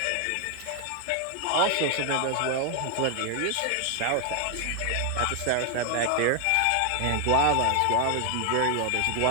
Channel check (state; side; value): different; both; correlation 0.00